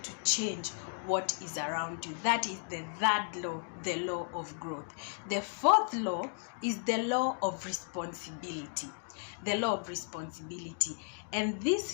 change what is around you. That is the third law, the law of growth. The fourth law is the law of responsibility. The law of responsibility. And this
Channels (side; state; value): right; silent; 55 dB below the other